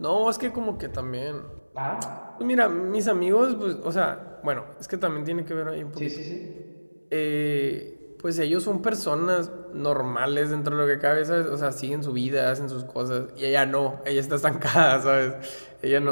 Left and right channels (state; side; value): inverted; both; correlation -1.00